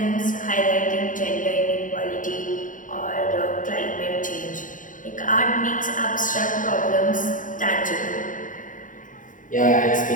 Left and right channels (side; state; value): right; late; 0.38 ms